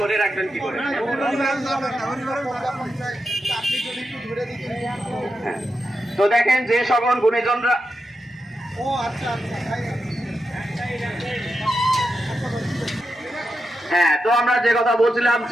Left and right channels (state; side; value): normal; both; correlation 0.88